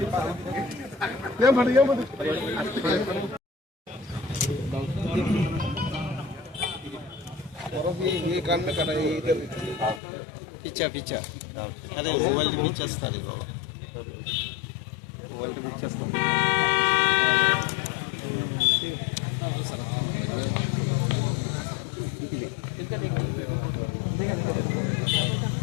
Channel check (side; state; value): right; drops out; at 10.0 s